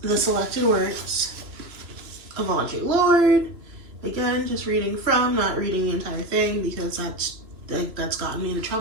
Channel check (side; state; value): left; late; 3.0 ms